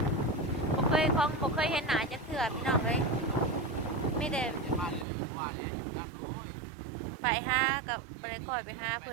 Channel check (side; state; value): left; drops out; at 5.1 s